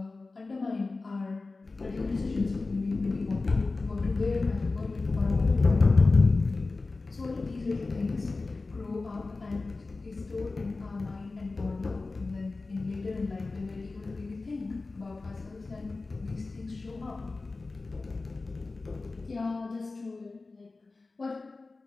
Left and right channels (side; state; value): right; quieter; 3.6 dB